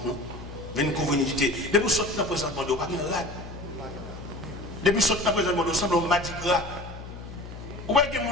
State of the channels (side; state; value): left; noise; hum, 12 dB below the sound